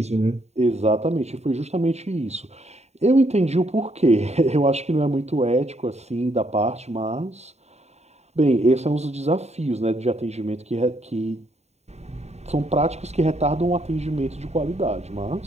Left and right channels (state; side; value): late; left; 0.32 ms